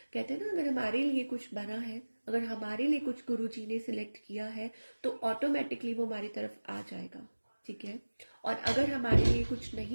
कहते हैं ना, अगर हमारे लिए कुछ बना है, अगर हमारे लिए कुछ गुरु जी ने सिलेक्ट किया है तो ऑटोमेटिकली वो हमारी तरफ आ जाएगा, ठीक है। और अगर हमारे लिए कुछ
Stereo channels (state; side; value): inverted; both; correlation -1.00